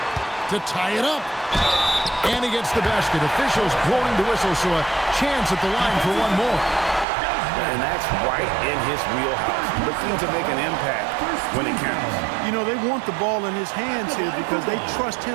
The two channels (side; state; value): left; drops out; at 7.1 s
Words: To tie it up. And he gets the basket. Officials blowing the whistle, so a chance at the line for one more. And that's right in his wheelhouse. Looking to make an impact when it counts. You know, they want the ball in his hands here because they trust